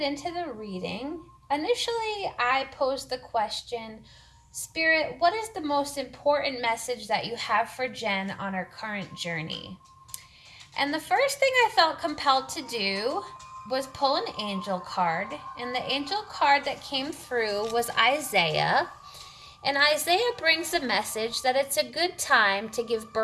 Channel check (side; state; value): both; identical; correlation 1.00